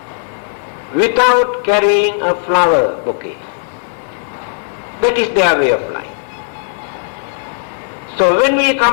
without carrying a flower bouquet. That is their way of life. So when we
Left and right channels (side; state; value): right; silent; digital silence